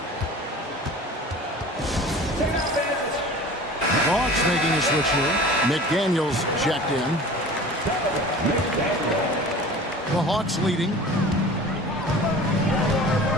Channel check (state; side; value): normal; both; correlation 0.40